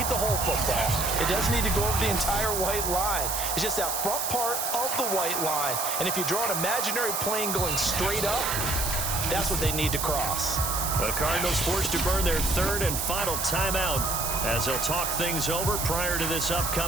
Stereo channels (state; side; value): noise; right; hiss, 2 dB below the sound